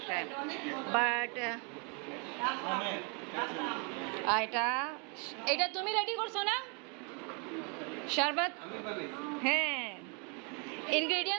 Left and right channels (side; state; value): left; quieter; 35.4 dB